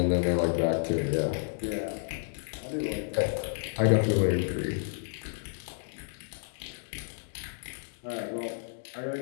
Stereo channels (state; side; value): silent; right; digital silence